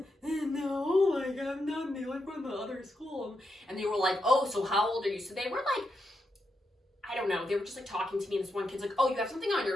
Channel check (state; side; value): normal; both; correlation 0.84